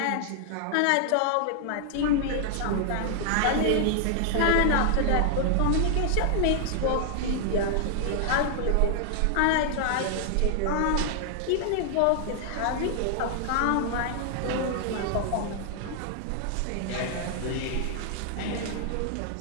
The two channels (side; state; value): both; different; correlation -0.01